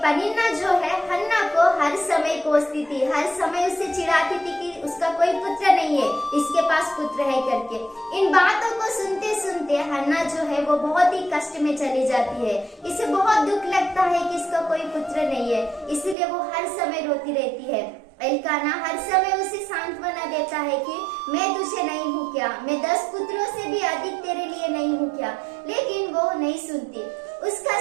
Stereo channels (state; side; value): drops out; left; at 16.2 s